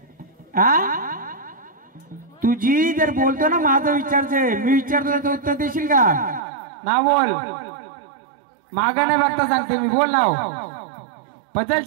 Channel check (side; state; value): left; drops out; at 6.4 s